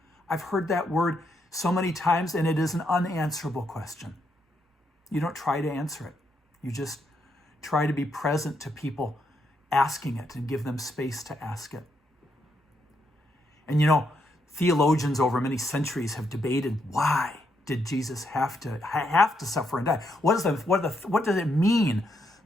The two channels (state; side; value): normal; both; correlation 0.78